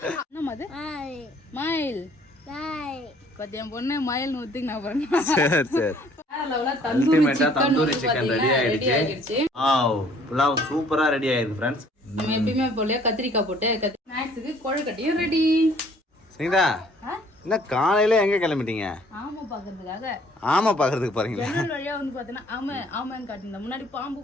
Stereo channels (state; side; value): normal; both; correlation 0.58